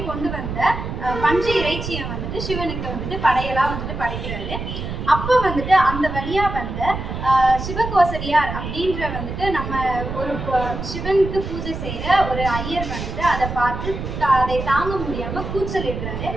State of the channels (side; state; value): right; noise; rumble, 6 dB below the sound